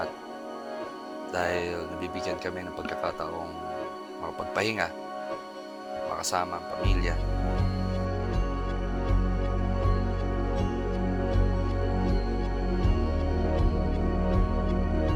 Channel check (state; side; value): identical; both; correlation 1.00